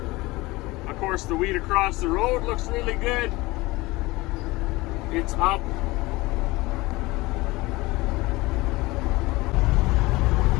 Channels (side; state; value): right; quieter; 21.2 dB